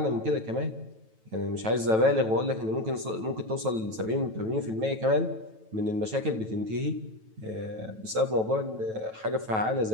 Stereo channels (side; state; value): left; late; 9.2 ms